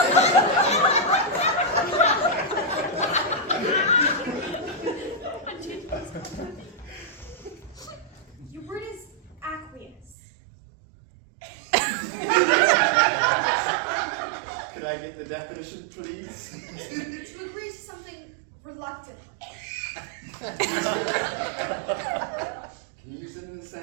Your word is aqueous. Could I get the definition, please? To agree to something reluctantly. Can you use it in a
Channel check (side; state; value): left; drops out; at 10.2 s